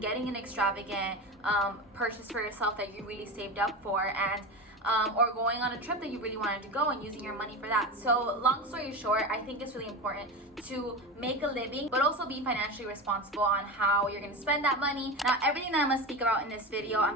an extravagant purchase for yourself that you really saved up for, and or going on a trip that you really wanted to go and using your money for that. So long story short, I think it's really important to make a living, but also be financially responsible on how you're going to spend that money. Now, everything that I'm going to speak about in this video,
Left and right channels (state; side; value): normal; both; correlation 0.24